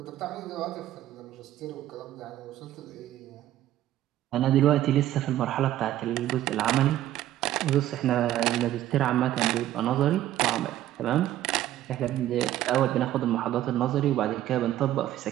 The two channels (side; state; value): left; quieter; 13.3 dB